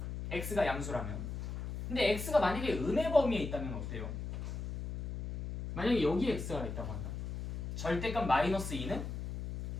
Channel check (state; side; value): noise; left; hum, 5 dB below the sound